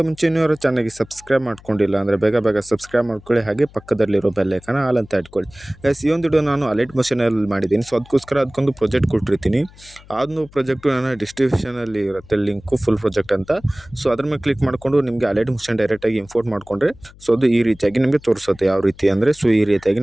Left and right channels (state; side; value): noise; left; hum, 23 dB below the sound